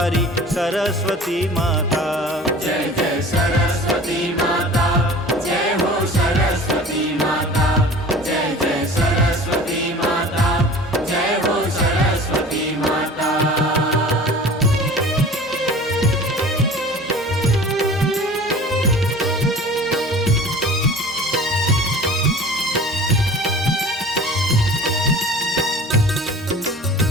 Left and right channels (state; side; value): normal; both; correlation 0.42